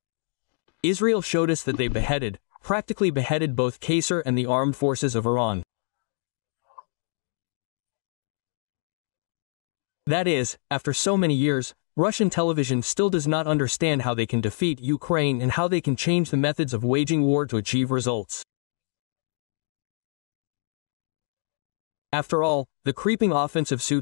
Israel showed us that they practically beheaded both Qasser and the armed forces of Iran. That is, after so many years, Russian television still does not understand how they can defeat Ukraine and how they can change the methods of waging war to achieve results. After all, the creeping offensive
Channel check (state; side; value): silent; right; digital silence